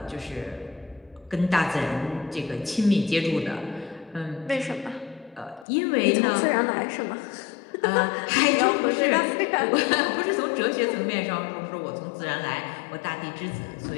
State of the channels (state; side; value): drops out; right; at 5.7 s